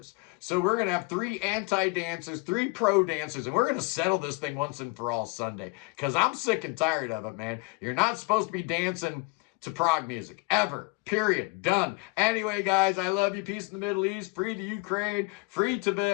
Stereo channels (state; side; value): quieter; right; 27.7 dB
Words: So we're going to have 3 anti-dancers, 3 pro dancers, and we're going to settle this thing once and for all Sunday. Because I'm sick and tired of it, man. You're not supposed to be dancing to prog music. Ever. Period. Done. Anyway, guys, I love you. Peace in the Middle East. Free the Ukraine. Free